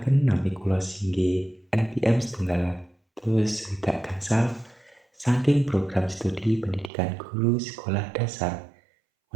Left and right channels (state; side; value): drops out; left; at 6.9 s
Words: nami kula Singgi NPM 1 gangsal saking program studi pendidikan guru sekolah dasar